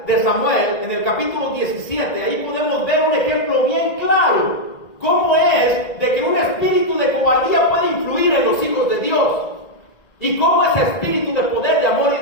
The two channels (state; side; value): late; right; 1.8 ms